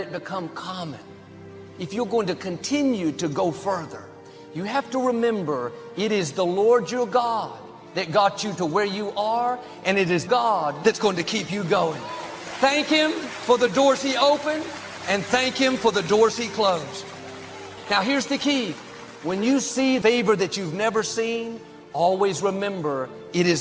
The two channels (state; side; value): identical; both; correlation 1.00